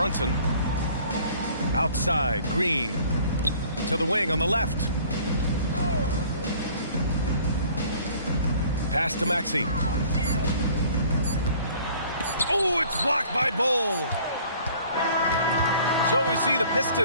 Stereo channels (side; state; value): both; inverted; correlation -0.53